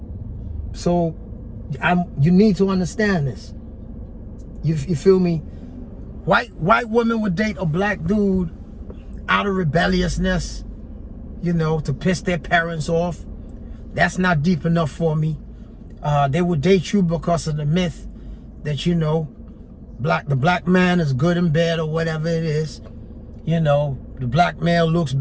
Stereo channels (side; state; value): both; identical; correlation 1.00